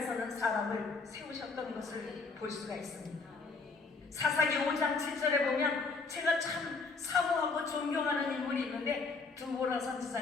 사람을 세우셨던 것을 볼 수가 있습니다. 사사기 5장 7절에 보면 제가 참 사모하고 존경하는 인물이 있는데 두보라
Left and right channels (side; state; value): right; quieter; 4.2 dB